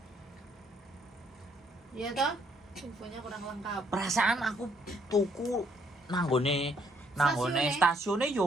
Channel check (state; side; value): normal; both; correlation 0.69